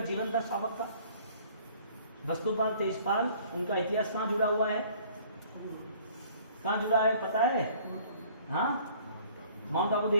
जीवन था श्रावक का। वस्तुपाल तेजपाल, उनका इतिहास कहाँ जुड़ा हुआ है? कहाँ जुड़ा है पता है? हाँ, माउंट आबू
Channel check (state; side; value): inverted; both; correlation -0.54